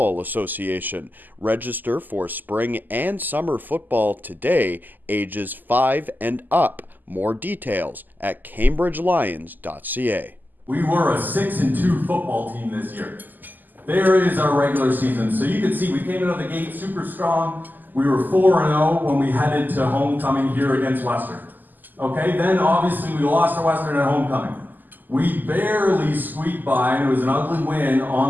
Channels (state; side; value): late; left; 0.086 ms